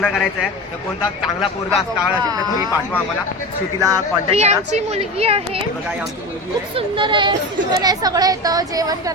करायचं आहे तर कोणता चांगला पोरगा स्थळ असेल तर तुम्ही पाठवा आम्हाला. श्रुतीला ही कॉन्टॅक्ट करा. आमची मुलगी आहे. बघा ही आमची मुलगी खूप आहे. सुंदर आहे. सुंदर आहे. सगळं येतं. जेवण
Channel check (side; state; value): both; normal; correlation 0.27